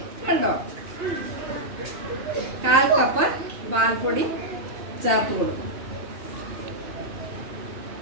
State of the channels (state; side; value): late; left; 2.6 ms